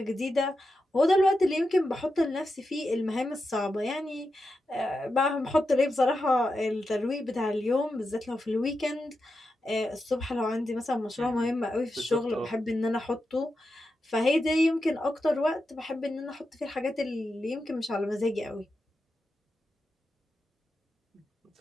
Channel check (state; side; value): normal; both; correlation 0.88